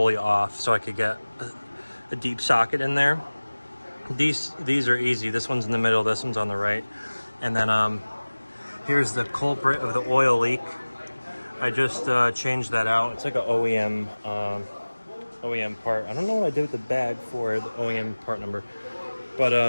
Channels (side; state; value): both; inverted; correlation -1.00